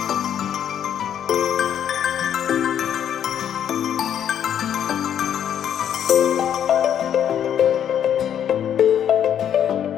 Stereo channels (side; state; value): right; quieter; 9.5 dB